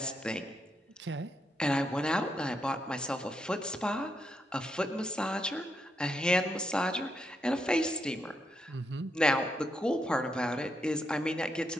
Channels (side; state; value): both; normal; correlation 0.81